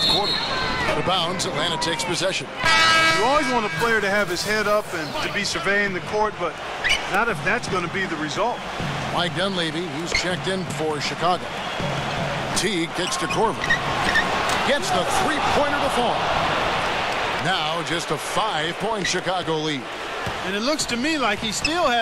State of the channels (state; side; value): identical; both; correlation 1.00